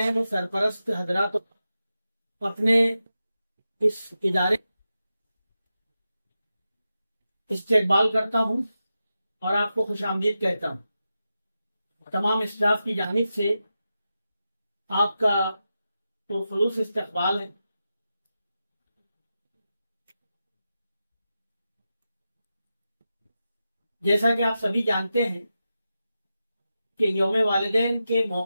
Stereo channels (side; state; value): both; inverted; correlation -0.90